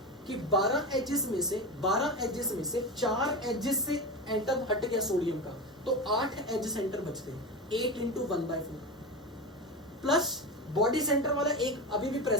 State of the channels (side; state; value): both; normal; correlation 0.22